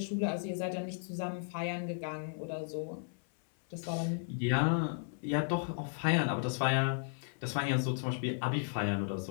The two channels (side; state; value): right; silent; 55 dB below the other